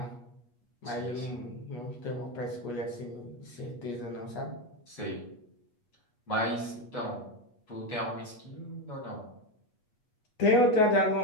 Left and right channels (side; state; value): right; late; 8.3 ms